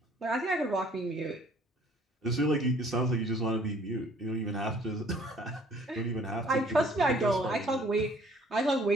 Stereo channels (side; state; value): both; normal; correlation 0.57